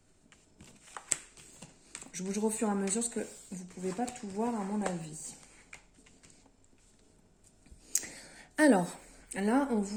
Je bouge au fur et à mesure parce que vous ne pouvez pas tout voir à mon avis. Alors, là, on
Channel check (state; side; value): identical; both; correlation 1.00